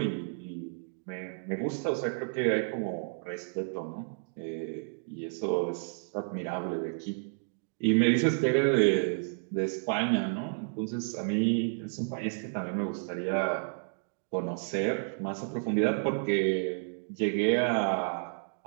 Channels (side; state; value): left; silent; digital silence